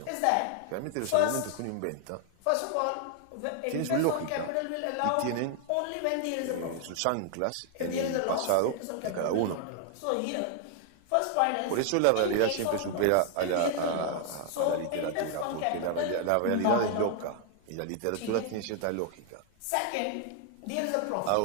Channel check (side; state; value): both; different; correlation 0.00